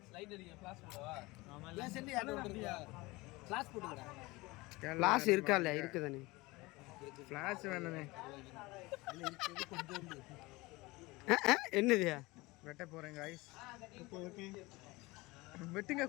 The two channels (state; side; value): quieter; right; 22.1 dB